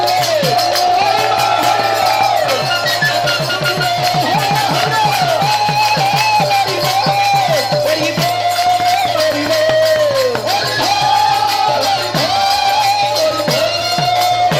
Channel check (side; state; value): both; identical; correlation 1.00